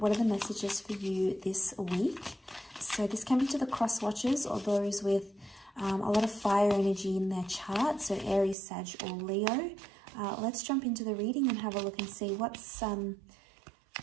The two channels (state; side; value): drops out; left; at 8.6 s